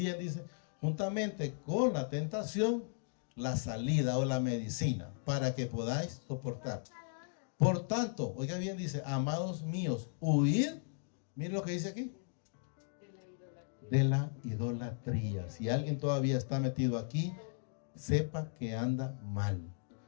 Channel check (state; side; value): silent; right; digital silence